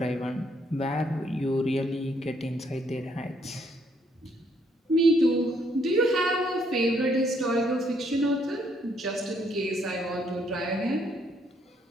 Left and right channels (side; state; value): both; normal; correlation 0.70